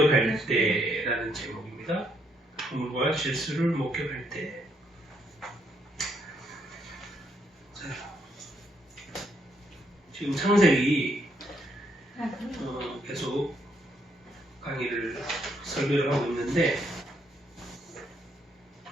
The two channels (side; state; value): both; normal; correlation 0.74